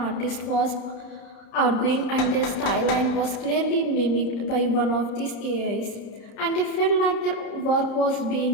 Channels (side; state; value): right; late; 30 ms